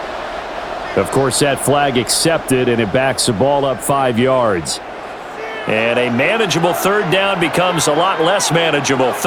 Of course, that flag accepted, and it backs the ball up 5 yards. And a manageable 3rd down becomes a lot less manageable.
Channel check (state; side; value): identical; both; correlation 1.00